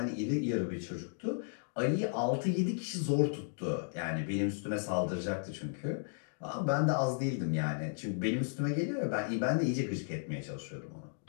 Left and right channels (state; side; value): silent; right; digital silence